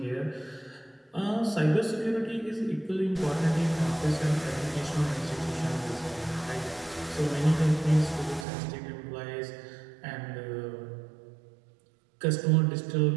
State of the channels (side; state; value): left; drops out; at 8.5 s